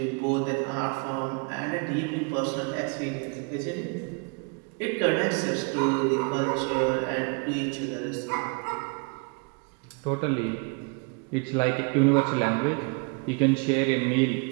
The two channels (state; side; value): quieter; left; 33.6 dB